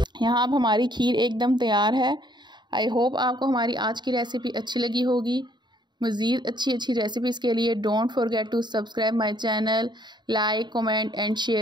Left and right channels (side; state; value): left; late; 0.21 ms